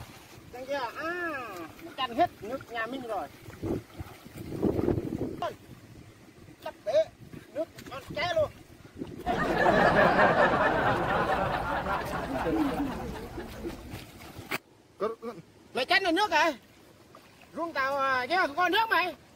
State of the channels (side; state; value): both; identical; correlation 1.00